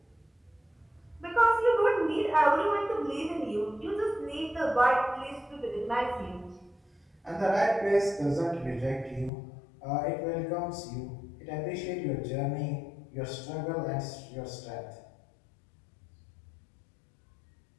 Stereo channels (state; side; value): drops out; right; at 9.3 s